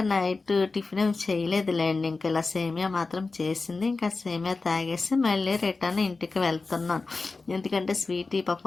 నైట్ టిఫిన్ ఏమి చేయలేదులేండి. ఇంకా ఇలా సేమియా మాత్రం చేసింది. ఇంకా సేమియా తాగేసి మళ్ళీ రిటర్న్ ఇంటికి వెళ్తున్నాను. ఎందుకంటే స్వీటీ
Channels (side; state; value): right; quieter; 3.9 dB